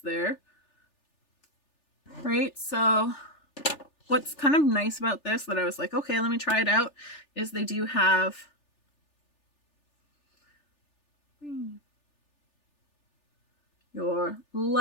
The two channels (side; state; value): right; late; 3.4 ms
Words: there, right? So what's kind of nice about this that I was like, okay, let me try it out, is they do have your